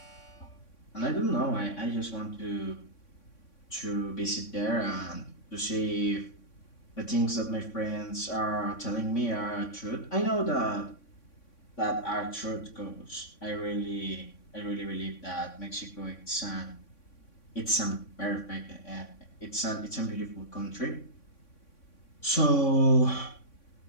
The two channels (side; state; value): right; late; 3.6 ms